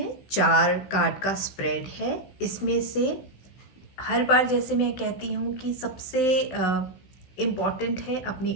4 कार्ड का स्प्रेड है। इसमें से हर बार जैसे मैं कहती हूँ कि सबसे इम्पॉर्टेंट है अपने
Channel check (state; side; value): late; right; 16 ms